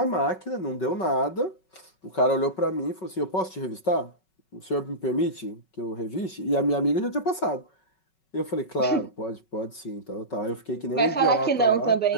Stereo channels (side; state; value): right; late; 5.3 ms